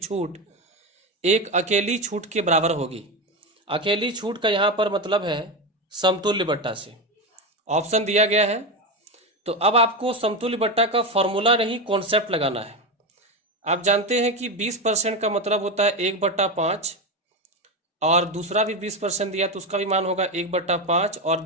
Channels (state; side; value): normal; both; correlation 0.15